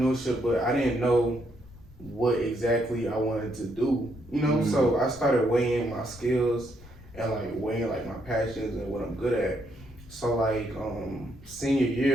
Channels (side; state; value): left; noise; rumble, 20 dB below the sound